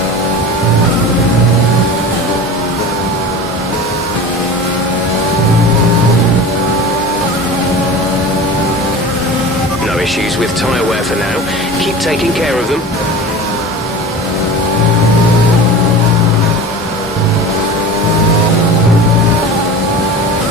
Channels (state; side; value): normal; both; correlation 0.34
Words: Issues with tyre wear for now. Keep taking care of them.